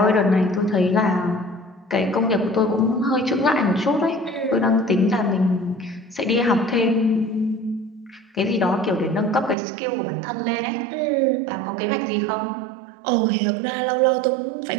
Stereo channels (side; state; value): left; drops out; at 9.6 s